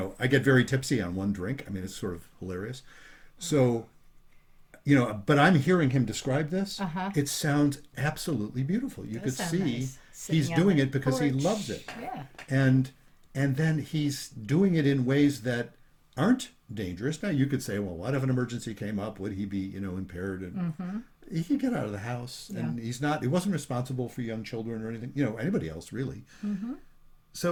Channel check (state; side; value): identical; both; correlation 1.00